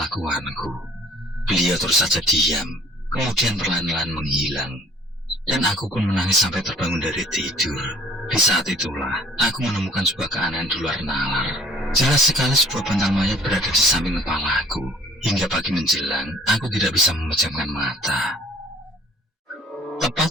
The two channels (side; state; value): both; normal; correlation 0.54